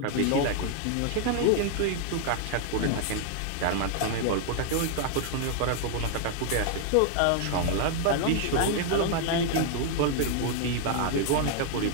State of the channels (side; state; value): both; different; correlation 0.00